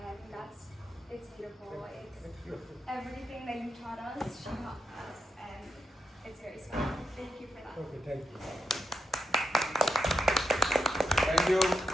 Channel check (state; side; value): normal; both; correlation 0.83